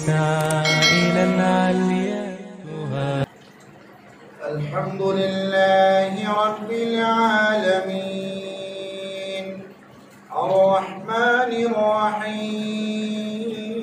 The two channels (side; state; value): both; identical; correlation 1.00